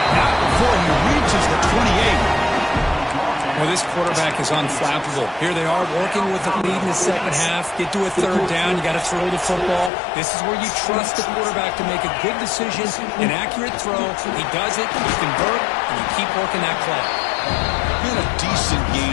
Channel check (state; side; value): drops out; right; at 9.9 s